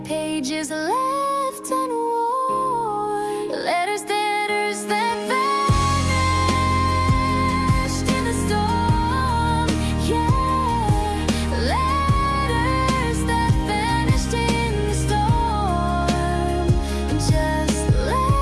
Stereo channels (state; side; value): identical; both; correlation 1.00